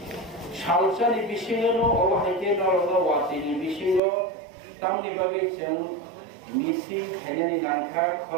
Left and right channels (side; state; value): left; drops out; at 4.0 s